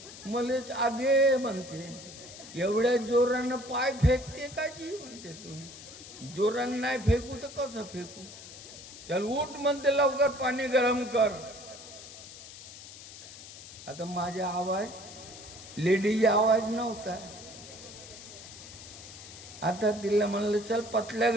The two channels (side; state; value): left; noise; hiss, 15 dB below the sound